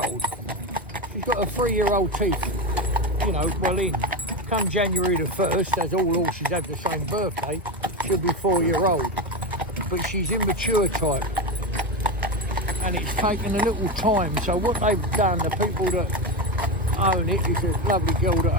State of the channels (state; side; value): normal; both; correlation 0.16